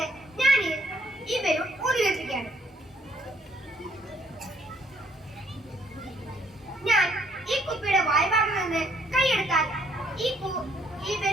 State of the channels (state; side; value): normal; both; correlation 0.67